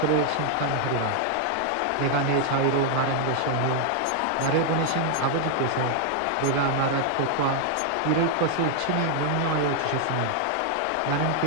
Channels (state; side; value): different; both; correlation 0.00